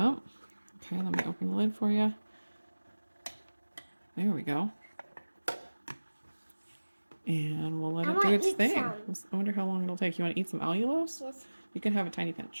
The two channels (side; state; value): both; inverted; correlation -1.00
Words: Okay, let me open the lid for you. There we go. And we'll let it do its thing. I wonder how long it'll take. You want to eat some allulose? Yes. You can have a tiny